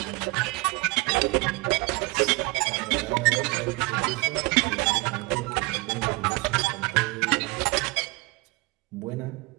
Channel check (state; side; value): quieter; left; 24.7 dB